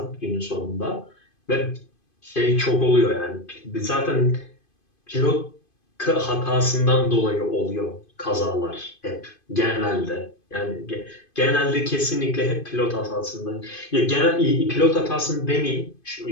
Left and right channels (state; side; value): late; right; 2.5 ms